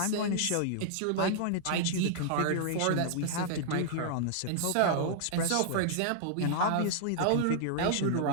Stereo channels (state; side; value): different; both; correlation -0.01